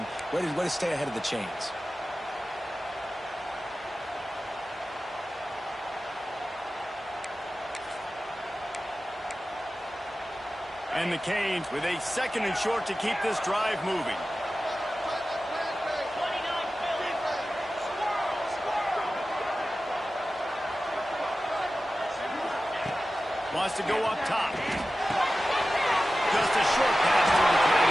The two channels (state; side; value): normal; both; correlation 0.95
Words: Way to stay ahead of the chains. And the Canes with a second and short to keep this drive moving. Wants to go up top. Just a short pass to the tight